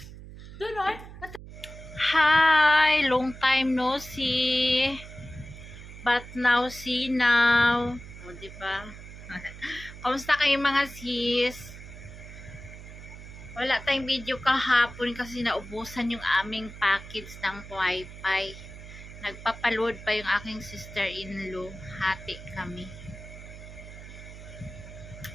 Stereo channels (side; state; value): right; noise; hum, 14 dB below the sound